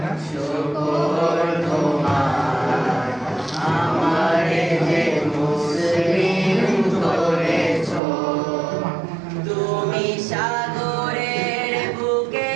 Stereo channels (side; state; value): left; drops out; at 8.0 s